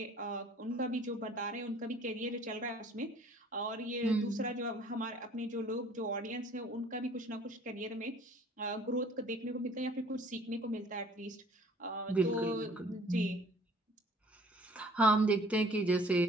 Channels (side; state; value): both; normal; correlation 0.54